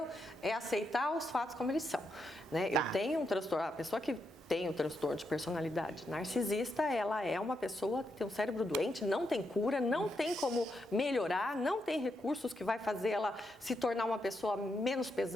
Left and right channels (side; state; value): both; normal; correlation 0.82